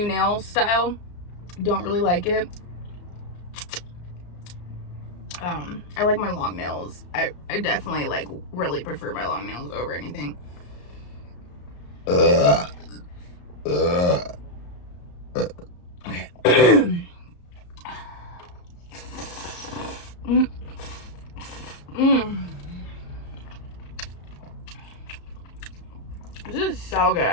nail style. Don't really like it. I like my long nails. I definitely like really prefer my long nails over anything. Okay. This is so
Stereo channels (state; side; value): late; right; 34 ms